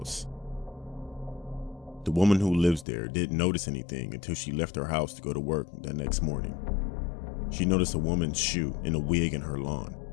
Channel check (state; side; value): drops out; right; at 2.9 s